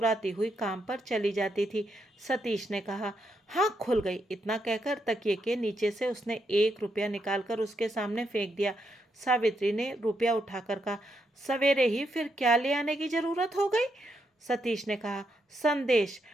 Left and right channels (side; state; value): both; normal; correlation 0.80